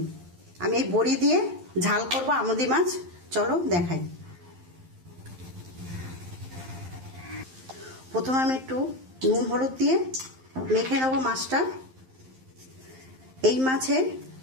আমি এই বড়ি দিয়ে ঝাল করব আমুদি মাছ। চলো দেখাই। প্রথমে আমি একটু নুন হলুদ দিয়ে মেখে নেবো মাছটা। এই মাছে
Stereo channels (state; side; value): late; left; 11 ms